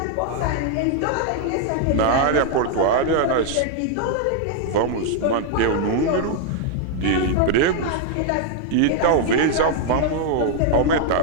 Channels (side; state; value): both; different; correlation 0.00